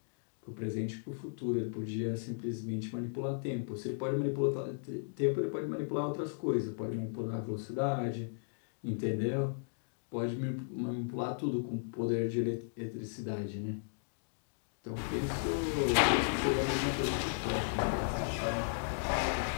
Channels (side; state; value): right; silent; digital silence